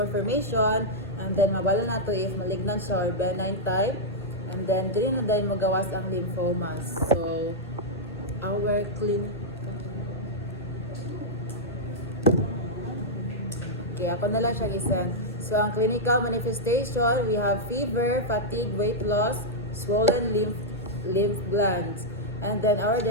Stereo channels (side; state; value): both; normal; correlation -0.07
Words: formation, and then mabala na to if malignant siya or benign type, and then dili na dahil magawas ang lymphomas. So, our Okay, ako na lang siya isend. So, ang clinical manifestation, we have fever, fatigue, weight loss, swollen lymph glands. And then our